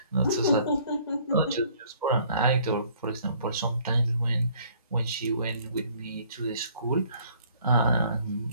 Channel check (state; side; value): inverted; both; correlation -0.59